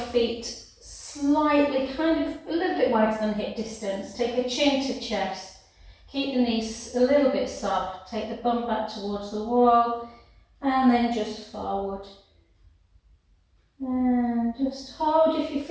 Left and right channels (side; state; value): both; identical; correlation 1.00